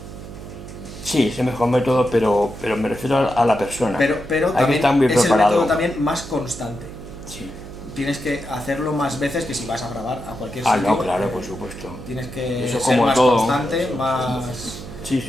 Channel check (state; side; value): noise; right; hum, 13 dB below the sound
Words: Sí, es el mejor método, pero me refiero a la persona. Pero hay también que estar muy es el preparado. método también más constante. Sí. Tienes que hacerlo más veces que si vas a grabar a cualquier sitio. No, claro, por supuesto. Tienes que Eso ser como más todo. constante, más...